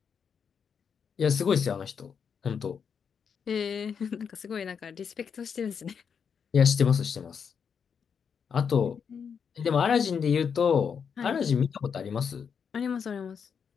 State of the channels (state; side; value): quieter; right; 6.8 dB